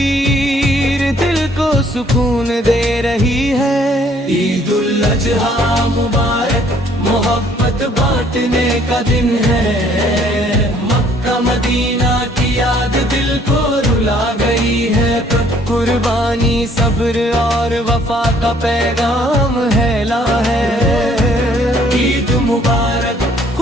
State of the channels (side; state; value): both; normal; correlation 0.62